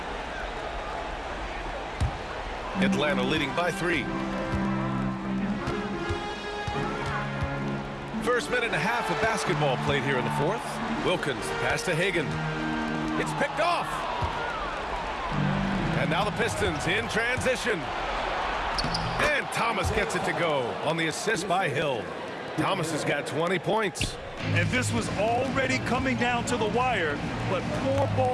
Atlanta leading by 3. First minute and a half of basketball played here in the fourth. Wilkins, pass to Hagan. It's picked off. And now the Pistons in transition. And Thomas gets it to go on the assist by Hill. Thomas has got 20 points. And this was already coming down to the wire, but poor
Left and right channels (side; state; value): both; identical; correlation 1.00